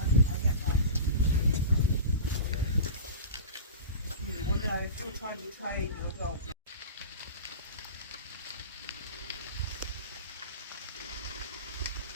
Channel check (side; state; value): both; inverted; correlation -0.30